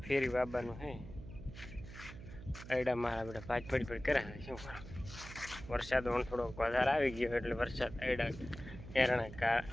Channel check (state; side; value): noise; right; hum, 13 dB below the sound